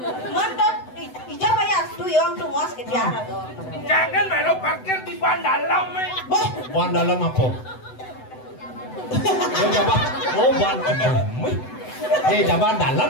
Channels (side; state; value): right; late; 7.9 ms